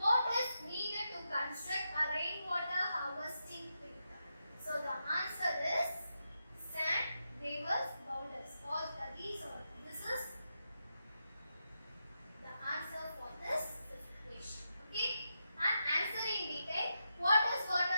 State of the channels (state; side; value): inverted; both; correlation -0.86